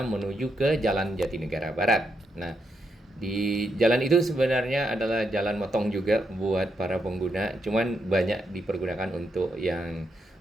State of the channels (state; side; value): normal; both; correlation 0.81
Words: menuju ke Jalan Jatinegara Barat. Nah, di jalan itu sebenarnya adalah jalan motong juga buat para pengguna, cuman banyak dipergunakan untuk yang